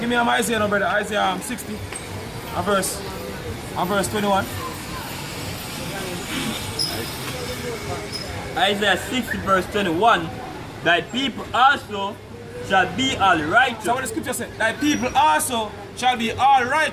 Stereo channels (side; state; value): both; identical; correlation 1.00